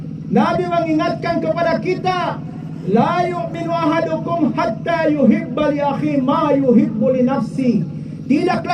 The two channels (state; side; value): identical; both; correlation 1.00